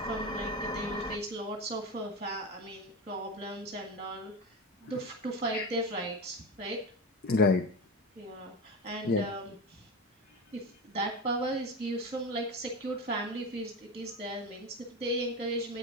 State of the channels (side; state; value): both; normal; correlation 0.22